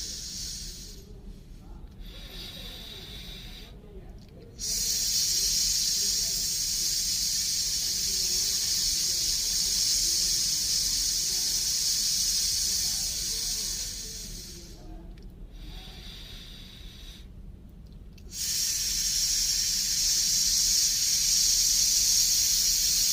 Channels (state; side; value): identical; both; correlation 1.00